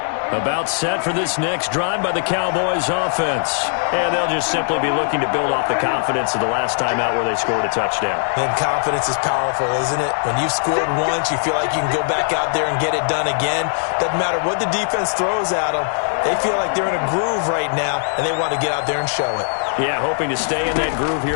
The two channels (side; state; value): right; silent; digital silence